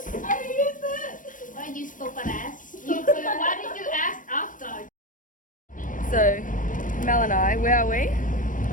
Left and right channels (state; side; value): late; right; 0.38 ms